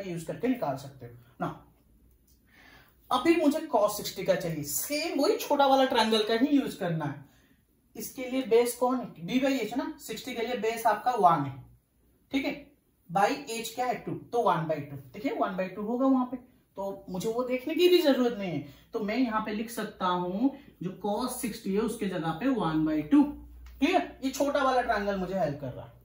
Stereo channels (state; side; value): identical; both; correlation 1.00